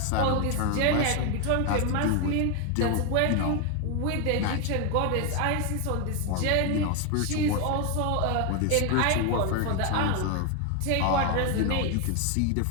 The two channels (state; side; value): different; both; correlation 0.01